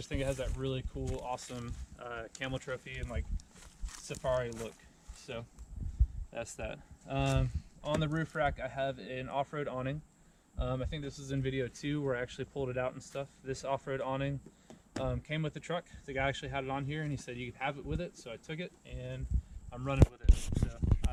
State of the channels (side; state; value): both; identical; correlation 1.00